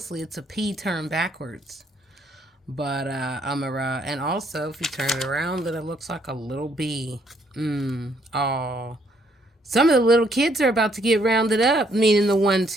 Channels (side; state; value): both; normal; correlation 0.69